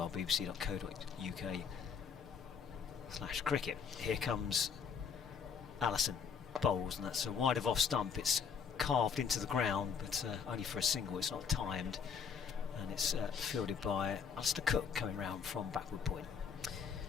bbc.co.uk/cricket. Here comes Allison, bowls, and that's a wide of off stump. It's carved into the ground, but only for a single. It's not timed, and it's fielded by Alistair Cook coming round from backward point.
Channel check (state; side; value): quieter; right; 6.6 dB